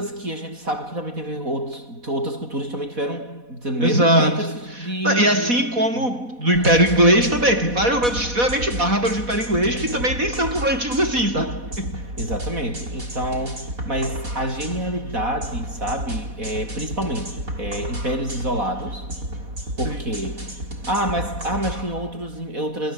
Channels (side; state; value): left; late; 4.1 ms